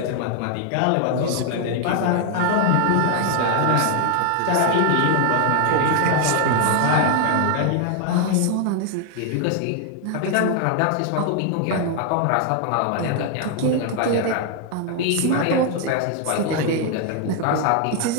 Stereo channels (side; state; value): both; different; correlation 0.00